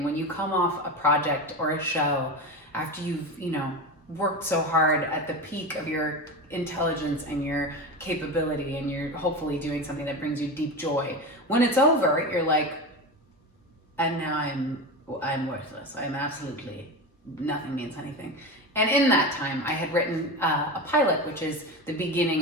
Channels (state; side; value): normal; both; correlation 0.23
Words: when you come off a project or a show after you've, worked so hard at the peak of your intelligence and your capability, and you're hopefully doing something that brings you deep joy. When it's over, you're like, and now I'm worthless. I'm absolutely, nothing means anything. And in that time, I had written a pilot, which is the